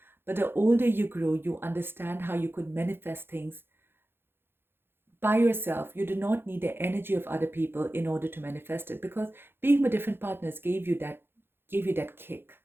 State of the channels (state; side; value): late; left; 0.10 ms